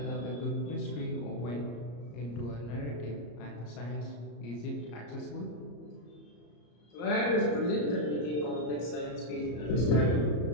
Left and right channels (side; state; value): right; late; 34 ms